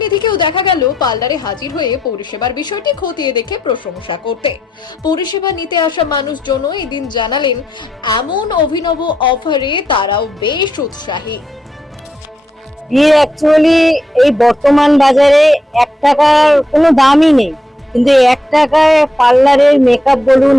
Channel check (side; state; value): both; normal; correlation 0.81